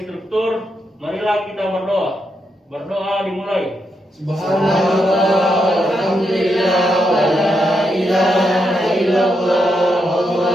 struktur, marilah kita berdoa. Berdoa dimulai. Subhanallah, alhamdulillah, wa la ilaha illallah,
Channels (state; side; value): normal; both; correlation 0.82